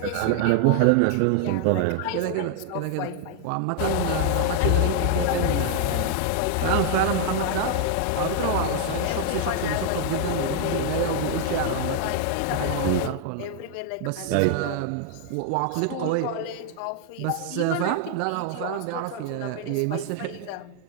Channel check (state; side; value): different; both; correlation 0.00